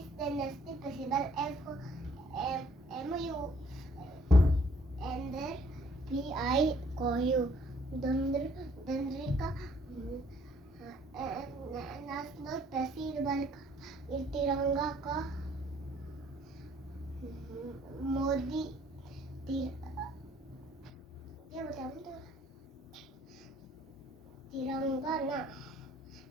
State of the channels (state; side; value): normal; both; correlation 0.61